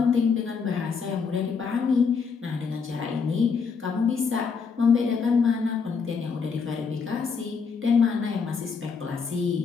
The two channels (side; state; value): right; quieter; 5.6 dB